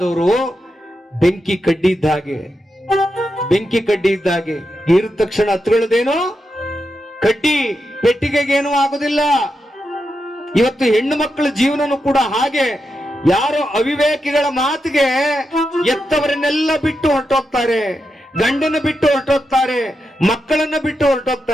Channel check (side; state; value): both; normal; correlation 0.87